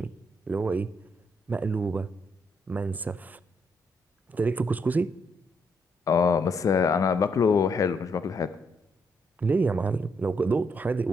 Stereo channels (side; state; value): both; normal; correlation 0.75